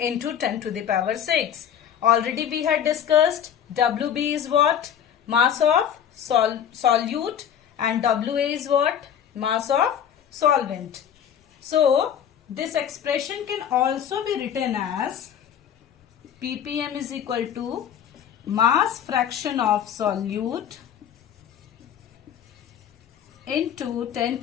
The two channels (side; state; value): right; quieter; 9.0 dB